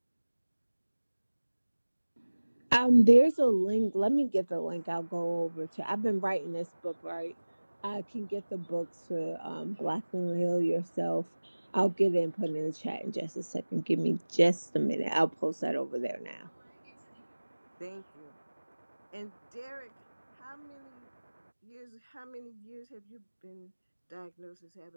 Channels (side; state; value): both; inverted; correlation -1.00